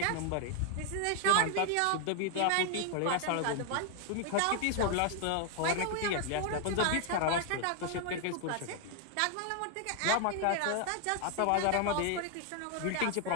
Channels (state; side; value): different; both; correlation 0.00